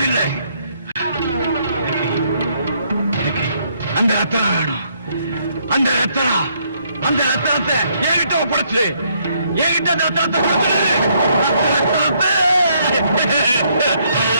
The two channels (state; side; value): inverted; both; correlation -0.71